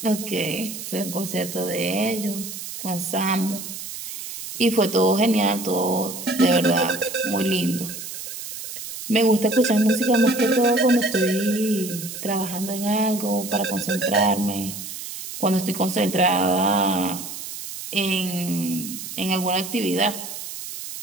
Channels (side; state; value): right; noise; hiss, 9 dB below the sound